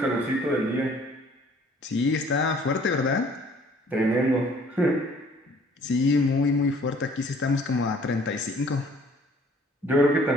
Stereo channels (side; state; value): both; normal; correlation 0.56